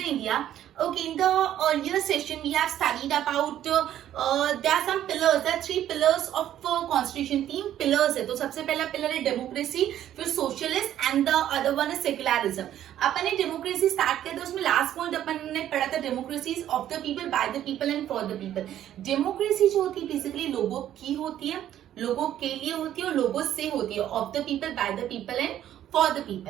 India. Okay, in the earlier session we have studied about there are some pillars, there are three pillars of constitution. तीन pillars है. तो सबसे पहला pillar है democracy, फिर socialist and the other one is secularism. अपन ने democracy start किया था, उसमें last point अपन ने पढ़ा था democracy is of the people, by the people and for the people. Democracy जो होती है basically लोगों की होती है, लोगों के लिए होती है और लोगों से होती है. Of the people, by the people and for the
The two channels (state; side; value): quieter; left; 11.6 dB